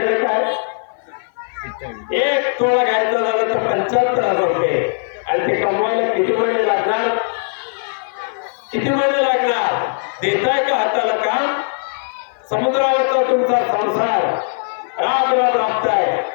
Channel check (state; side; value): silent; right; 55 dB below the other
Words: काय, एक तोळा घ्यायचा झालं तर 75,000 रुपये. आणि ते कमवायला किती महिने लागणार, किती महिने लागणार. देताय का हाताला काम. समुद्रावरचा तुमचा संसार राब राब राबताय,